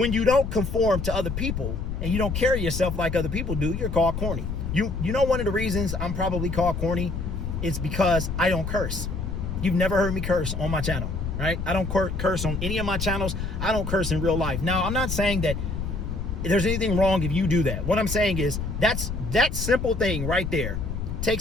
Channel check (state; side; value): noise; left; rumble, 4 dB below the sound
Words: you don't conform to other people and you don't carry yourself like other people do, you're called corny. You know one of the reasons I'm probably called corny is because I don't curse. You've never heard me curse on my channel. Right? I don't curse on any of my channels. I don't curse in real life. Now, I'm not saying that there's anything wrong if you do that. What I'm saying is that simple thing right there